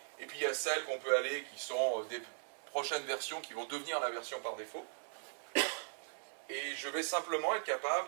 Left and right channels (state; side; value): silent; left; digital silence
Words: Et puis il y a celles qu'on peut aller, qui sont des prochaines versions qui vont devenir la version par défaut. Et je vais simplement être